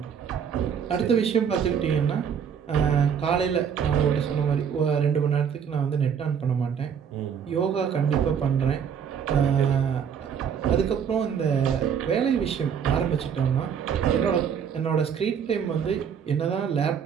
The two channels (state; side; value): quieter; left; 7.5 dB